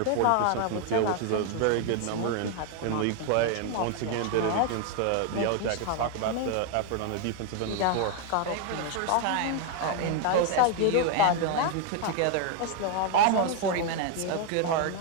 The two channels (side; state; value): both; different; correlation 0.00